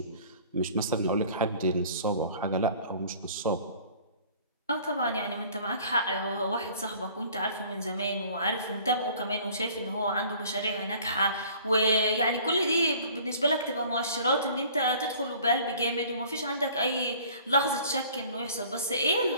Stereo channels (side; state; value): both; inverted; correlation -0.51